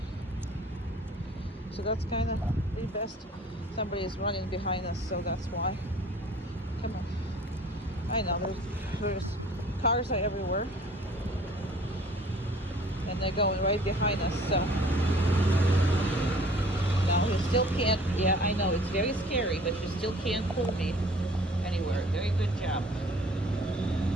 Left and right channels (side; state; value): both; normal; correlation 0.50